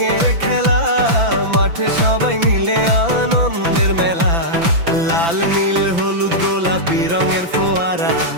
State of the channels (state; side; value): late; left; 5.9 ms